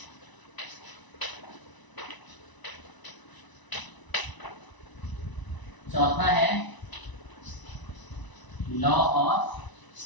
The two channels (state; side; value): late; right; 1.0 ms